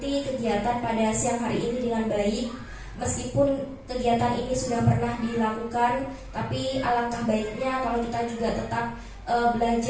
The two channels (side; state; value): both; identical; correlation 1.00